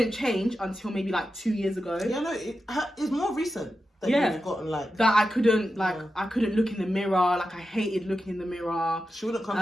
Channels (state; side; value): normal; both; correlation 0.90